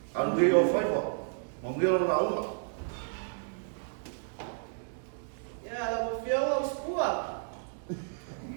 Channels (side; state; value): left; silent; digital silence